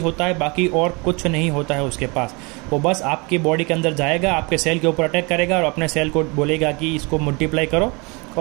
होता है, बाकी और कुछ नहीं होता है उसके पास। वो बस आपकी बॉडी के अंदर जाएगा, आपके सेल के ऊपर अटैक करेगा और अपने सेल को बोलेगा कि इसको मल्टीप्लाई करो।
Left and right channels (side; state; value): left; quieter; 28.5 dB